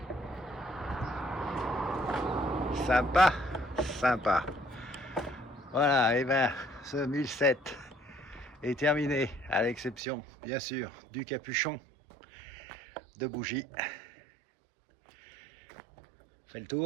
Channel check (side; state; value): left; drops out; at 10.0 s